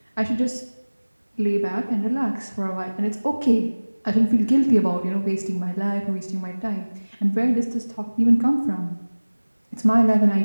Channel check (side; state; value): both; inverted; correlation -1.00